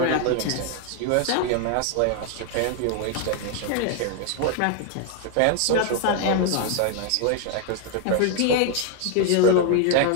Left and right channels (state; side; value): different; both; correlation 0.00